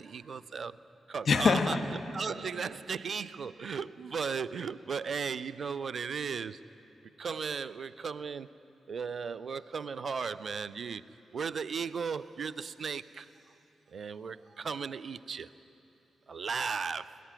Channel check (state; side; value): normal; both; correlation 0.81